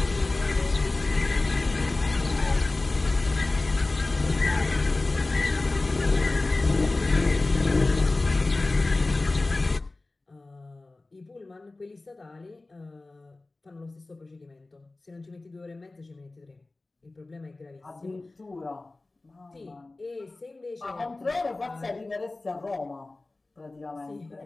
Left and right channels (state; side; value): quieter; right; 3.1 dB